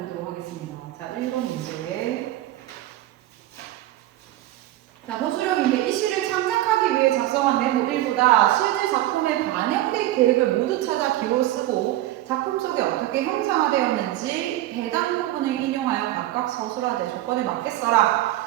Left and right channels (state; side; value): quieter; left; 15.1 dB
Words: 하겠습니다. 자, 1번 문제. 자, 호수령인데 이 시를 창작하기 위해 작성한 메모 1보다 실제 작품에 반영될 계획을 모두 찾아 기호 쓰고 작품 속에 어떻게 형상화되었는지 해당 부분을 인용하여 각각 서술하되 조건에 맞게